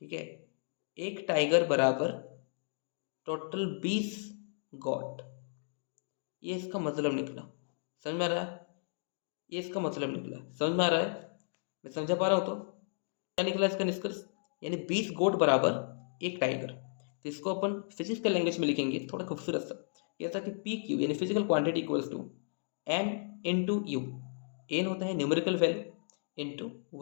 ठीक है, एक टाइगर बराबर टोटल 20 गॉट, ये इसका मतलब निकला। समझ में आ रहा है, ये इसका मतलब निकला, समझ में आ रहा है, मैं समझा पा रहा हूँ। तो क्या निकला इसका निष्कर्ष, यानी 20 गोट बराबर एक टाइगर। तो इसको अपन फिजिक्स के लैंग्वेज में लिखेंगे थोड़ा खूबसूरत सा, ऐसा कि PQ यानी physical quantity equals to N into U. N होता है numerical value into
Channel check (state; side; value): silent; right; digital silence